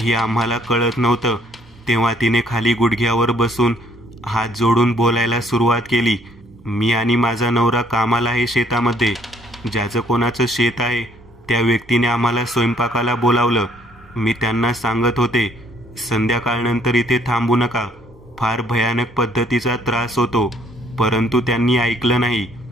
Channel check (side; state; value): both; normal; correlation 0.64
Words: आम्हाला कळत नव्हतं. तेव्हा तिने खाली गुडघ्यावर बसून हात जोडून बोलायला सुरुवात केली. मी आणि माझा नवरा कामाला आहे शेतामध्ये. ज्याचं कोणाचं शेत आहे त्या व्यक्तीने आम्हाला स्वयंपाकाला बोलावलं. मी त्यांना सांगत होते, संध्याकाळनंतर इथे थांबू नका, फार भयानक पद्धतीचा त्रास होतो. परंतु त्यांनी ऐकलं नाही.